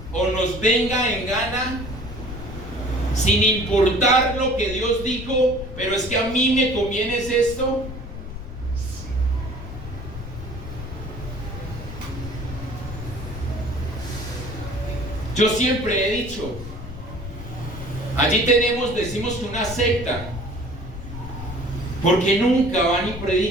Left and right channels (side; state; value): left; noise; rumble, 10 dB below the sound